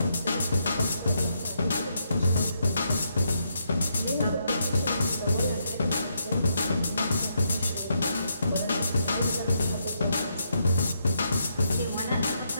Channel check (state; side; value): inverted; both; correlation -0.78